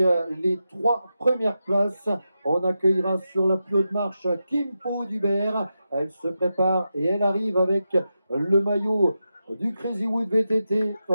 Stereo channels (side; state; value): both; inverted; correlation -0.89